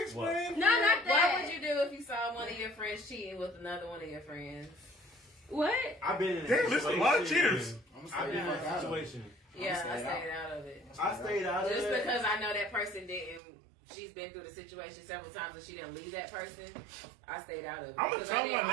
explain. No, not that. What would you do if you saw one of your friends cheating with another one of your friends? What? I've been in a Damn, listen, a lot of situation. cheaters. I've been in a situation. Yeah, I stayed out of it. I stayed out of Just it. because I know that person didn't. She's been through the situation several times and she didn't leave that person. I stayed out of it. I'm gonna Because tell I didn't-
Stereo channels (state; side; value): drops out; left; at 13.4 s